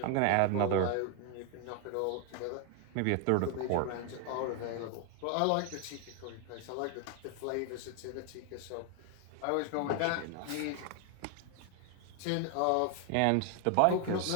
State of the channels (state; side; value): different; both; correlation 0.01